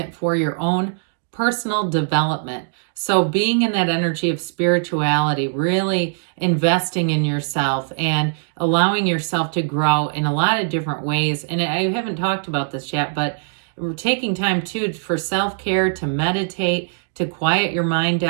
for your own personal development. So being in that energy of spirituality, really investing in yourself and allowing yourself to grow in a lot of different ways. And I haven't talked about this yet, but we're taking time too for self-care, to meditate, to quiet your mind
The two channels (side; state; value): left; silent; digital silence